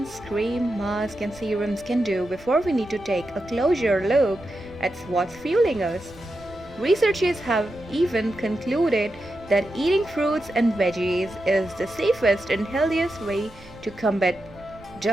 cream, masks, and serums can do before we need to take a closer look at what's fueling us. Researchers have even concluded that eating fruits and veggies is the safest and healthiest way to combat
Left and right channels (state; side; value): noise; right; rumble, 22 dB below the sound